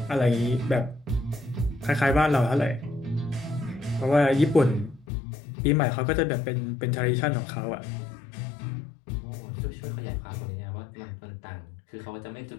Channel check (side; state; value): right; drops out; at 5.1 s